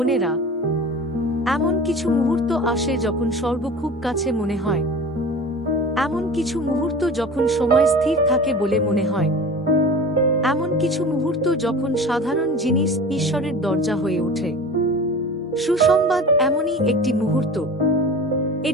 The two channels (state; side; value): normal; both; correlation 0.36